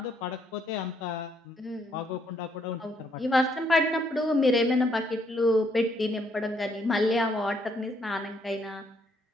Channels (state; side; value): normal; both; correlation 0.71